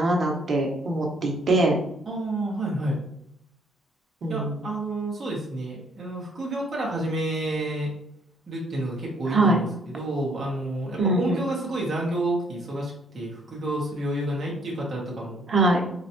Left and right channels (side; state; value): both; normal; correlation 0.64